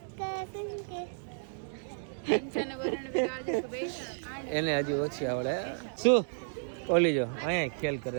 એને હજી ઓછી આવડે. શું ઓલી જો અહીંયા ખેલ કરે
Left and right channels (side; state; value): left; silent; 56 dB below the other